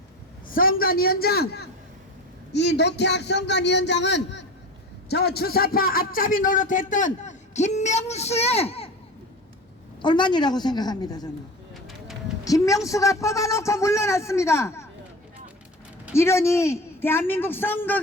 선관위원장, 이 노태악 선관위원장은 저 주사파 앞잡이 노릇했던 김명수의 얼마이라고 생각합니다. 저는 김명수가 뽑아놓고 물러났습니다. 이러니 대한민국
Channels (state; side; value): normal; both; correlation 0.32